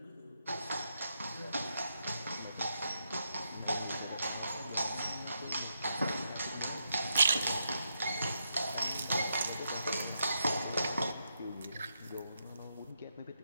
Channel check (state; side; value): inverted; both; correlation -0.81